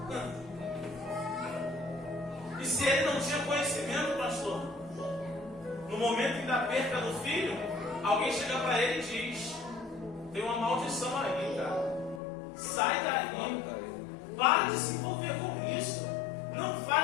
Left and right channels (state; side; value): drops out; right; at 12.2 s